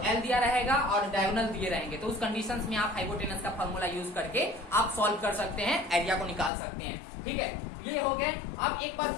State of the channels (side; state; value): right; drops out; at 6.5 s